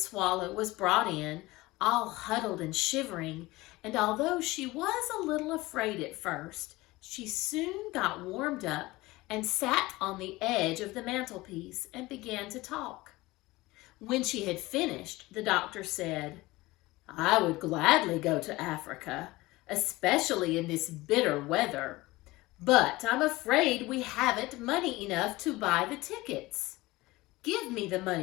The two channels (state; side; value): quieter; right; 20.1 dB